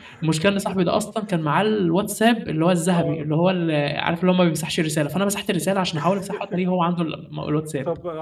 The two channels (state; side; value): identical; both; correlation 1.00